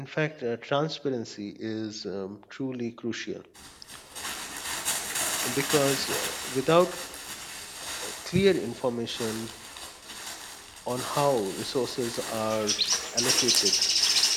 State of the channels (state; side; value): identical; both; correlation 1.00